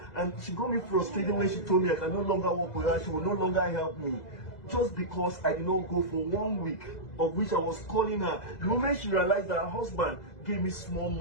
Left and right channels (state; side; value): late; right; 2.0 ms